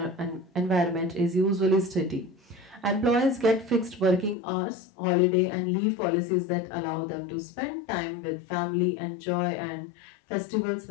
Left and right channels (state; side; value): drops out; right; at 4.4 s